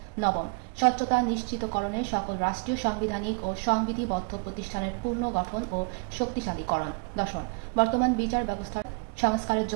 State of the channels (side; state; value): left; quieter; 35.1 dB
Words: নবম, স্বচ্ছতা নিশ্চিতকরণে সকল রাষ্ট্রীয় সাংবিধানিক ও সংবিধিবদ্ধ প্রতিষ্ঠানের পূর্ণ গঠন ও শক্তিশালীকরণ। দশম, বর্তমান বিচার ব্যবস্থার সংস্কারের